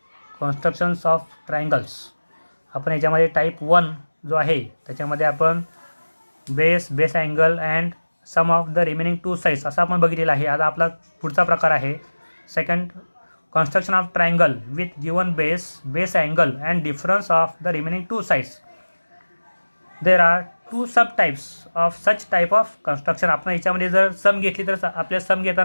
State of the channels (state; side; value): inverted; both; correlation -1.00